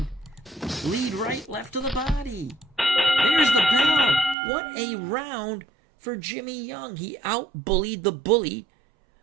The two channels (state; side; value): drops out; left; at 4.4 s